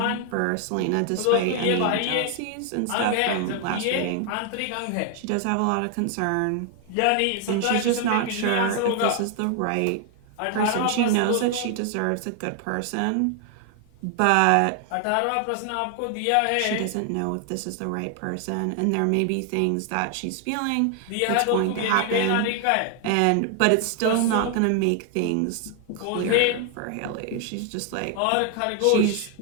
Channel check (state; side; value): different; both; correlation 0.00